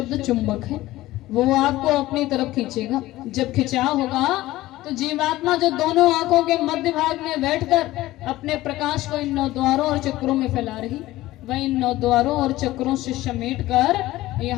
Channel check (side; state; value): right; quieter; 16.8 dB